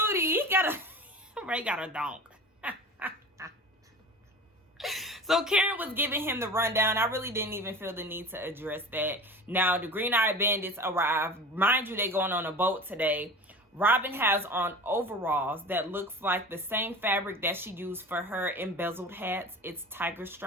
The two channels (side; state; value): both; normal; correlation 0.35